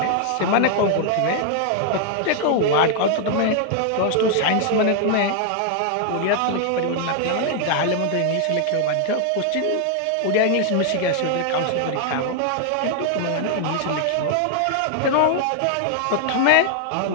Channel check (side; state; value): both; different; correlation 0.00